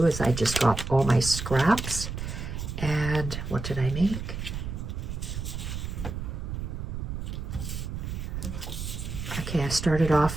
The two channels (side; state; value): right; noise; rumble, 5 dB below the sound